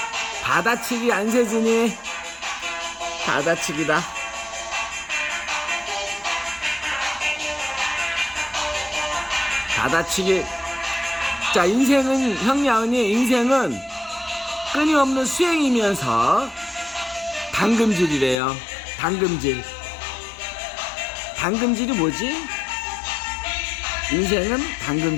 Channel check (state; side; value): drops out; right; at 18.4 s